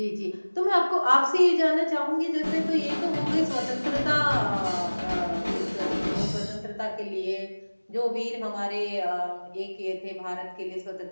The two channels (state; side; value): inverted; both; correlation -1.00